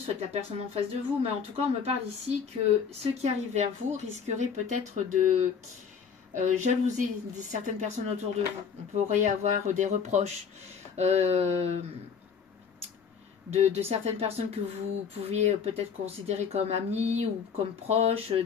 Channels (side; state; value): right; quieter; 6.6 dB